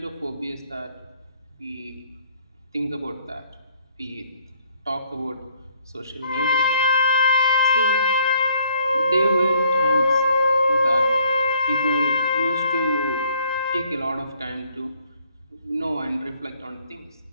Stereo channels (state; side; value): inverted; both; correlation -0.64